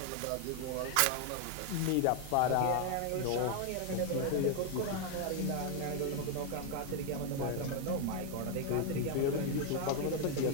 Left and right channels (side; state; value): both; different; correlation 0.01